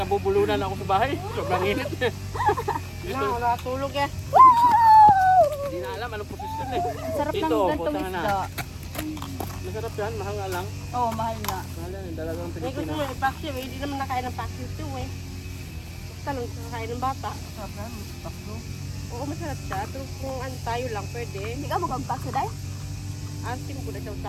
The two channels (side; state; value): both; identical; correlation 1.00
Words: nabubulunan ako sa bahay. Sobrang init. Dito, Nakatulog eh. hindi na alam anong posisyon eh. Ang sarap ng Dito, gantong punta na. isda. Masarap yan, mahal nga lang. Oo, mahal nga. Mahal yan, dalagang May gusto Pilipino. mo i-paksiw eh. Hindi naman nakain ng paksiw ito eh. Basta lang kakain ng bata. Sarap na, bakso. Oo, masarap siya. Pero kung ano tayo lang, pwede. Hindi ka magpagpakso dahil? Asim ko na siya